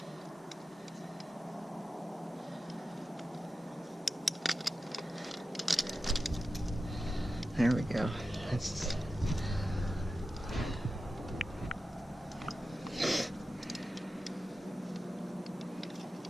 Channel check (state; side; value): normal; both; correlation 0.92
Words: There we go. That's...